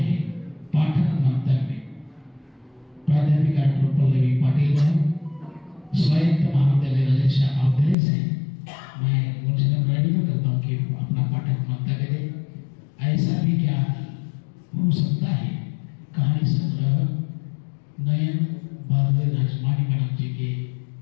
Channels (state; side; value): drops out; right; at 8.0 s